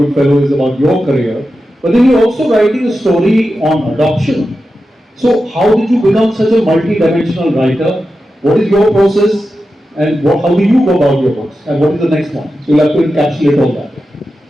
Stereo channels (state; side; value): normal; both; correlation 0.91